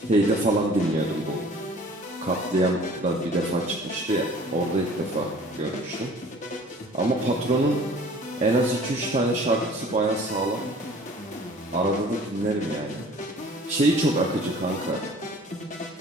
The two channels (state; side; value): normal; both; correlation 0.49